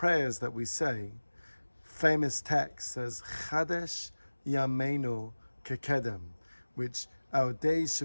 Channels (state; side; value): inverted; both; correlation -1.00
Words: that we say, famous text says, Chadesh Yameinu Kekedem, which our days